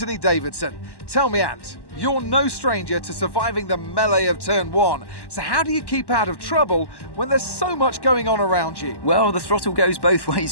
Davidson. Tell me, Ant, you're no stranger to surviving the melee of turn one. So how do you keep out of trouble when there's so much going on around you? Well, the throttle goes both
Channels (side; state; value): right; late; 1.1 ms